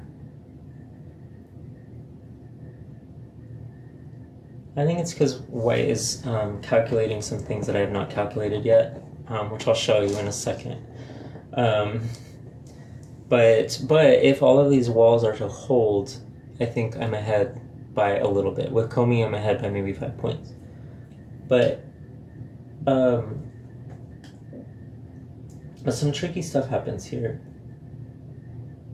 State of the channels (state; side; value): identical; both; correlation 1.00